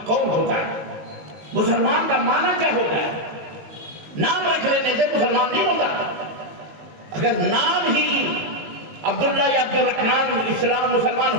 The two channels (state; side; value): late; left; 18 ms